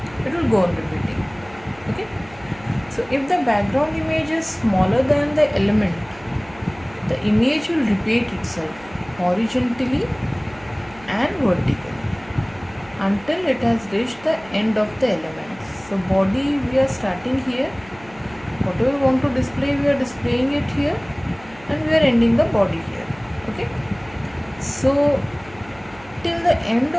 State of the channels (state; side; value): noise; right; hum, 22 dB below the sound